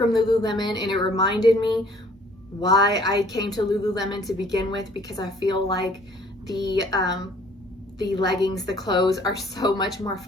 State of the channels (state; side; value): normal; both; correlation 0.57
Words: Lululemon, and it reminded me why I came to Lululemon to begin with, because I feel like the leggings, the clothes are so much more